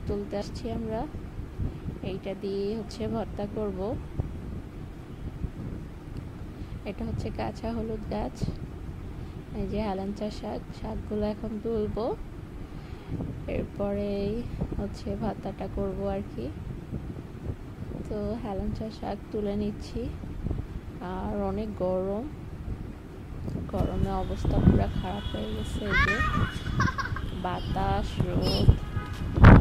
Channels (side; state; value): both; identical; correlation 1.00